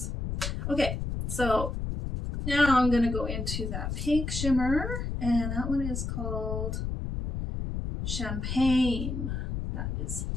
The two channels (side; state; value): left; noise; rumble, 3 dB below the sound